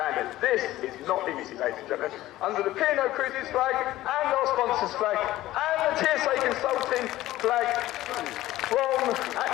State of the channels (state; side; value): quieter; right; 15.6 dB